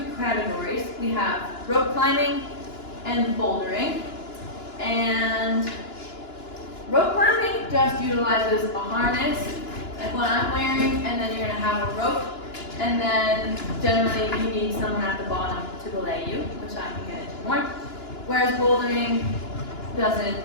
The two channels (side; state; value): right; late; 2.9 ms